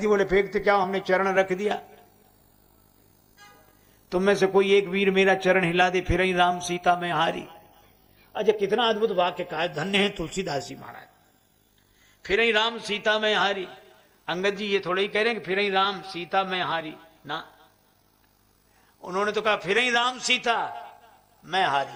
जी बोले फेंकते क्या, हमने चरण रख दिया। तुम में से कोई एक वीर मेरा चरण हिला दे, फिर ही राम सीता में हारी। अच्छा, कितना अद्भुत वाक्य कहा, धन्य है तुलसीदास जी महाराज। फिर ही राम सीता में हारी। अंगद जी ये थोड़े ही कह रहे हैं कि फिर ही राम सीता में हारी ना, उन्होंने तो कहा फिर ही राम सीता मैं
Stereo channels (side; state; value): both; identical; correlation 1.00